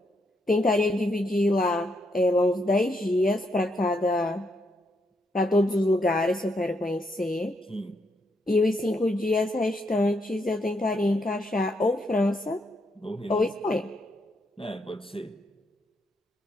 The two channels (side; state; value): both; normal; correlation 0.77